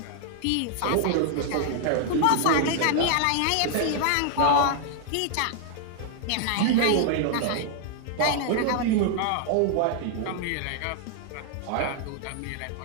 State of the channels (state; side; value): different; both; correlation 0.00